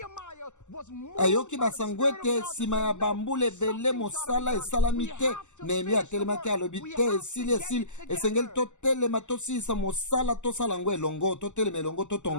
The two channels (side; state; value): right; late; 0.84 ms